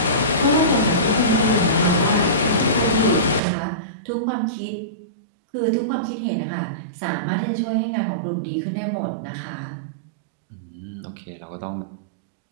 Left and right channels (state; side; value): drops out; left; at 3.4 s